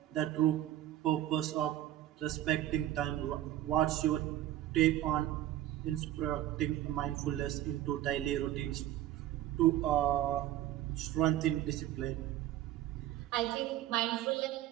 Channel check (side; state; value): left; quieter; 13.4 dB